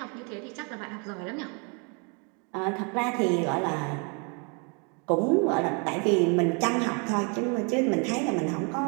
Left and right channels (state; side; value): quieter; left; 35.3 dB